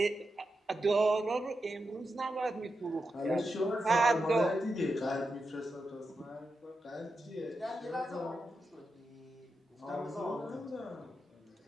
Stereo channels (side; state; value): both; normal; correlation 0.88